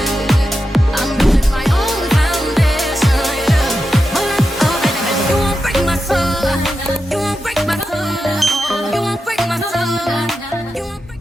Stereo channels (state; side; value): normal; both; correlation 0.89